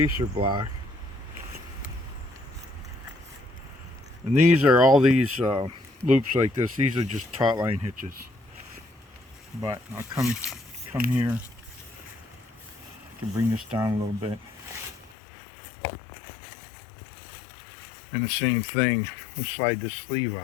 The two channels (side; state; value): right; drops out; at 15.2 s